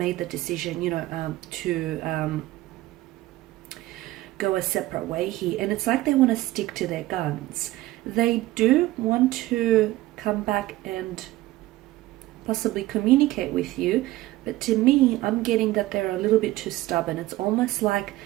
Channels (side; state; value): left; quieter; 17.2 dB